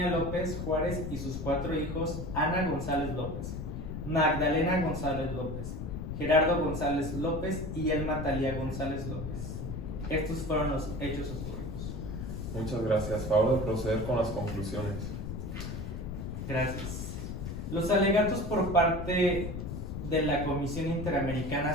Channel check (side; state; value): left; noise; rumble, 6 dB below the sound